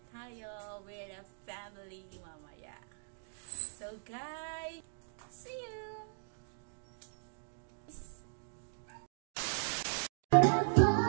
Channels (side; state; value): left; silent; digital silence